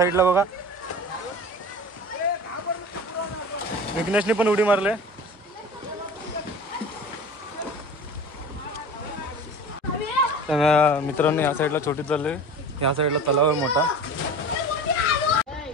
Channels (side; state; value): both; normal; correlation 0.36